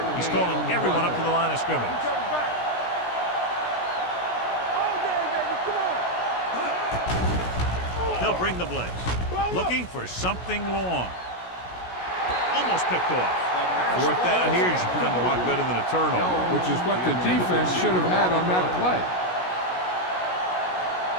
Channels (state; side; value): late; right; 16 ms